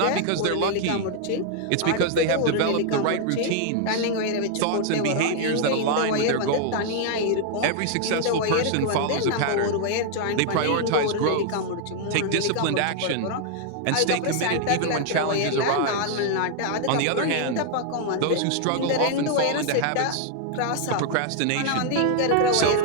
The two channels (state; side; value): different; both; correlation 0.00